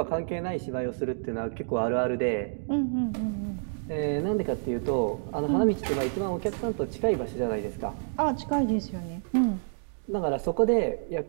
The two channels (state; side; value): silent; left; digital silence